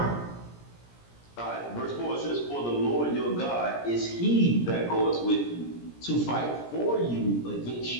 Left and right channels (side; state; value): right; late; 17 ms